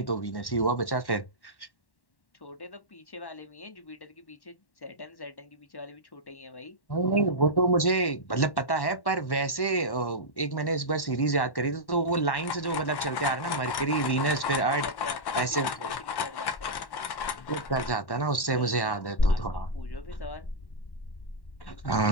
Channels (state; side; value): late; right; 1.1 ms